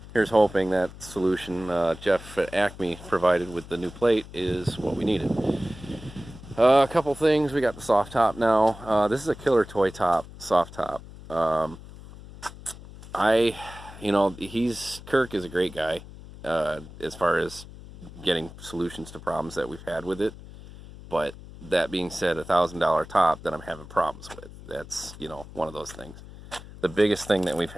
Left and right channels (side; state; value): left; noise; hum, 16 dB below the sound